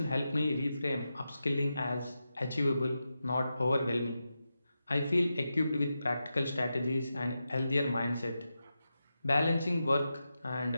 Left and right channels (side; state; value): both; inverted; correlation -0.89